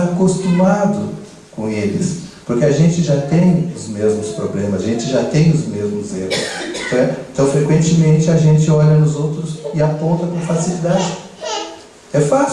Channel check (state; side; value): identical; both; correlation 1.00